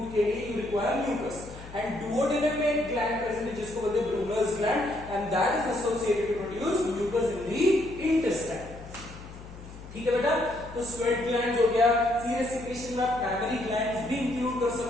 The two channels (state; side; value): noise; left; hum, 15 dB below the sound